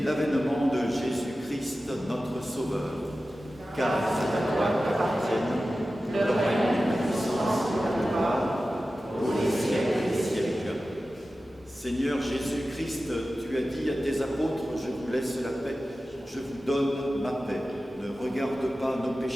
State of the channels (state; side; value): normal; both; correlation 0.94